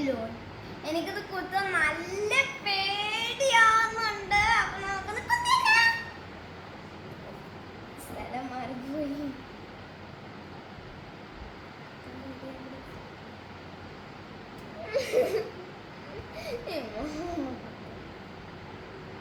എനിക്കത് കുത്താൻ നല്ല പേടിയാവുന്നുണ്ട്. അപ്പൊ നമുക്കൊന്ന് കുത്തിയേക്കാം. സ്ഥലം മാറിപ്പോയി.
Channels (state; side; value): identical; both; correlation 1.00